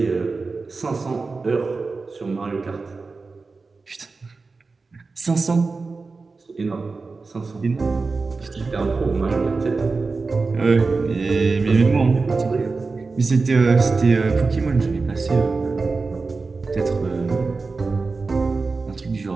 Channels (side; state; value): left; quieter; 4.1 dB